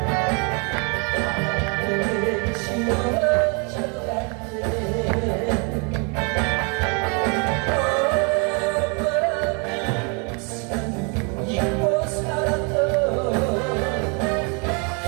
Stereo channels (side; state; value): left; quieter; 35.3 dB